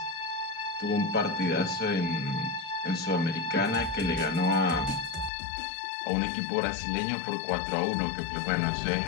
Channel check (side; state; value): right; drops out; at 5.3 s